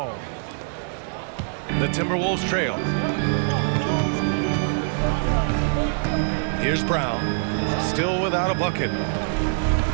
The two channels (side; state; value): left; silent; digital silence